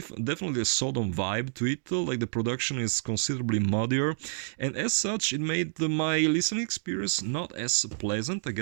a Sodom vibe to it. The production is considerably muddier, and as such, it made my listening experience not as pleasant, I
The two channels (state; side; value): silent; left; digital silence